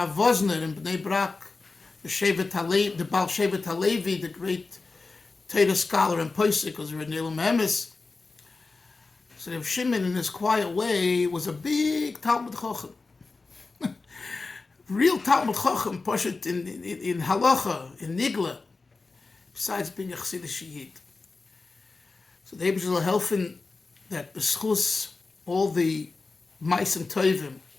Vosner in Bnei Brak, the Baal Shevet Halevi, the great Torah scholar and Posek, was Renel Memes. So Reb Shimon, in his quiet way, was a big Talmud Chacham. Real Talmud Chacham, Poshet in Halacha, in Nigla, besides being a Chasidic Yid. So the Eibusher will helfen that beschus all the Ma'asim Tovim,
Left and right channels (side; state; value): right; quieter; 3.9 dB